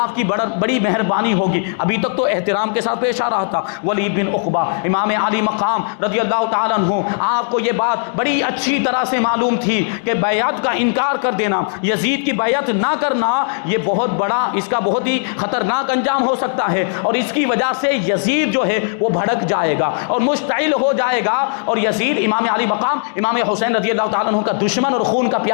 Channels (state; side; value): silent; right; digital silence